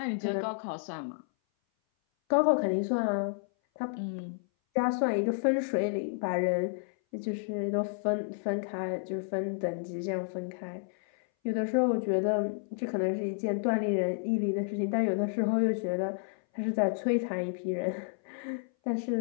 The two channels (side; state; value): right; silent; 57 dB below the other